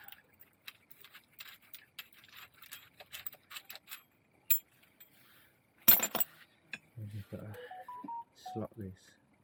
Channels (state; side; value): identical; both; correlation 1.00